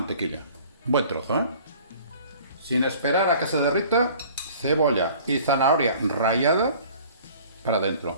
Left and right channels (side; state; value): both; inverted; correlation -0.49